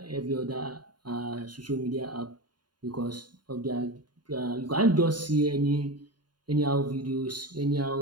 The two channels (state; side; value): late; left; 0.71 ms